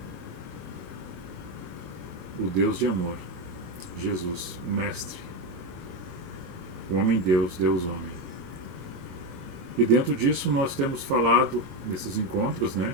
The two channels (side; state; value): left; late; 22 ms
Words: o Deus de amor, Jesus, o Mestre, o Homem-Deus, Deus-Homem. E dentro disso nós temos falado nesses encontros,